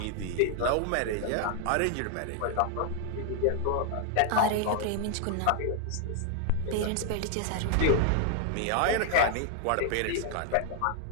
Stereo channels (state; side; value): different; both; correlation 0.00